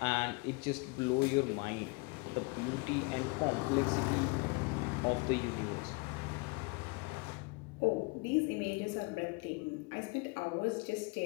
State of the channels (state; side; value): quieter; right; 28.5 dB